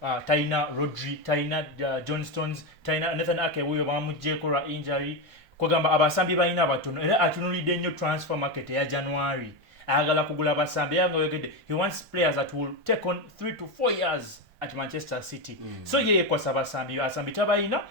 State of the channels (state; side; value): late; left; 1.5 ms